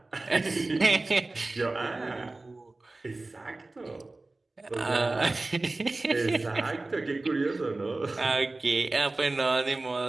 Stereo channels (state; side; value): quieter; left; 3.1 dB